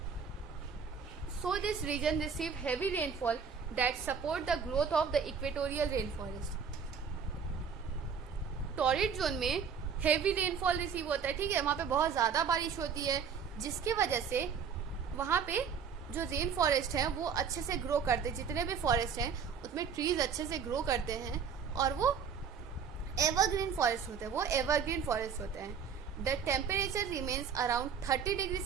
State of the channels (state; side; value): quieter; left; 6.5 dB